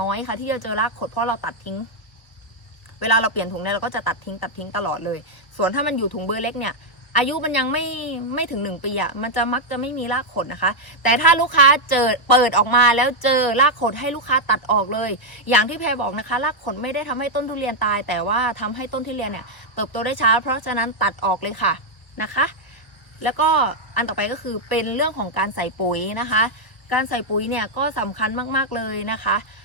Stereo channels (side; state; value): right; late; 1.4 ms